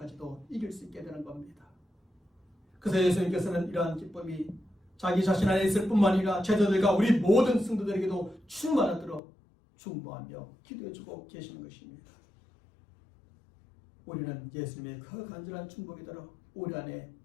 이길 수 있게 되는 겁니다. 그래서 예수님께서는 이러한 기쁨이 자기 자신 안에 있을 뿐만 아니라 제자들과 우리 모든 성도들에게도 충만하도록 중보하며 기도해주고 계시는 것입니다. 우리는 예수님의 그 간절한 중보기도로 우리 안에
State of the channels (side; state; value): right; drops out; at 9.2 s